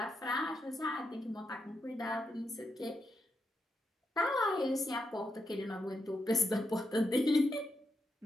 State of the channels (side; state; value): both; normal; correlation 0.84